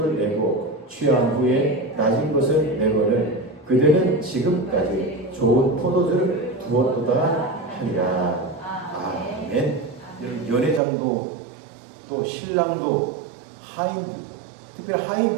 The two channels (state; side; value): drops out; left; at 10.8 s